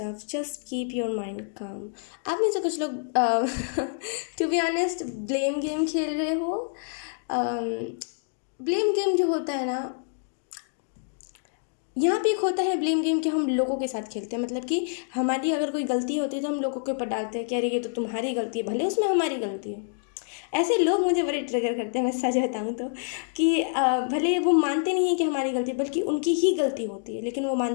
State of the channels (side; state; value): right; silent; digital silence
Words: just keep your mind calm. आप में से कुछ लोग to be honest blame game खेल रहे हो। ब्लेम गेम जो होता है ना, यहाँ पे एक होता है ब्लेम गेम कि हम लोगों के साथ खेलते हैं, मतलब कि हमारी अगर कोई गलती होती है तो हम लोगों के ऊपर डालते हैं कि अरे ये तो तुम्हारी गलती है, भले उसमें हमारी गलती है। ऐसे लोग मुझे बड़े ट्रिगर करते हैं, मैं सच बताऊँ तो, कि भले वो मानते नहीं हैं कि हमारी गलती, बल्कि उनकी ही गलती होती है, लेकिन वो